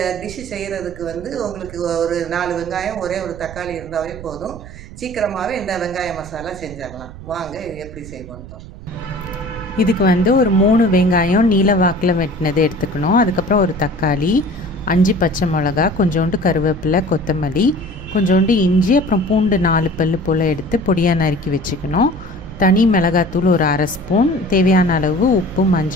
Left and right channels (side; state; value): right; noise; rumble, 15 dB below the sound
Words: டிஷ்ஷு செய்கிறதுக்கு உங்களுக்கு ஒரு 4 வெங்காயம் ஒரே ஒரு தக்காளி இருந்தாவே போதும். சீக்கிரமாகவே இந்த வெங்காய மசாலா செஞ்சிடலாம். வாங்க எப்படி செய்வோன்னு பார்ப்போம். இதுக்கு ஒரு 3 வெங்காயம் நீல வாக்கில் வெட்டினது எடுத்துக்கணும். அதுக்கப்புறம் ஒரு தக்காளி, 5 பச்சை மிளகா, கொஞ்சோண்டு கருவேப்பிலை, கொத்தமல்லி, கொஞ்சோண்டு இஞ்சி, அப்புறம் பூண்டு 4 பல்லு போல் எடுத்து பொடியாக நறுக்கி வச்சுக்கணும். தனி மிளகாத்தூள் ஒரு 1/2 ஸ்பூன், தேவையான அளவு உப்பு,